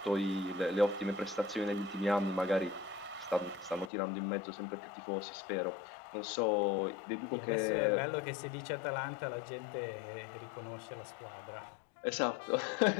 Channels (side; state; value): right; drops out; at 3.9 s